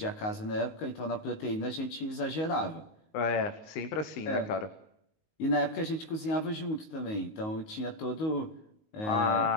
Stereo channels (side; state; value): right; late; 19 ms